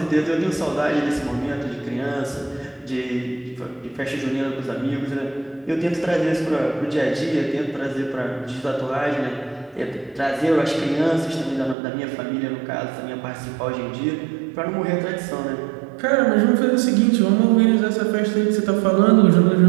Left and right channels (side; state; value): left; drops out; at 11.8 s